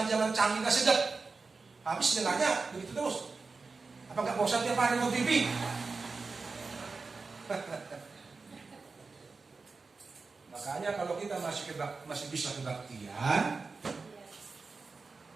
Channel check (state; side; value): quieter; left; 4.2 dB